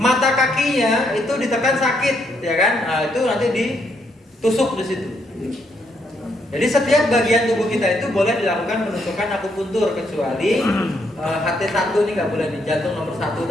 kakinya itu ditekan sakit, ya kan? Nah, itu nanti ditusuk di situ. Jadi setiap bagian tubuh kita itu boleh dilakukan penusukan akupuntur kecuali HT1 ini nggak boleh di jantung nomor 1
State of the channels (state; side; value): normal; both; correlation 0.74